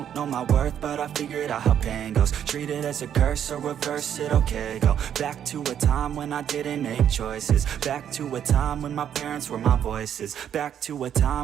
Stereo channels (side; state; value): left; quieter; 9.4 dB